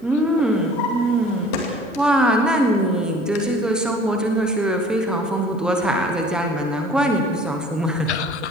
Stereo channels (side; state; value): both; normal; correlation 0.49